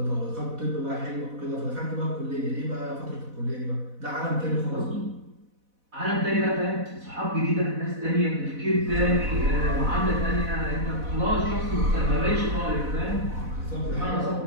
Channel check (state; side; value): late; left; 4.1 ms